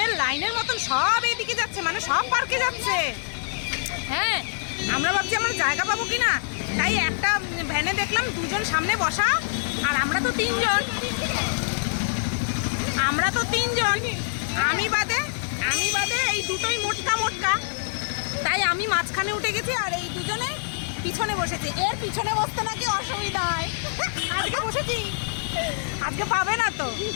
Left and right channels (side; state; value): right; silent; digital silence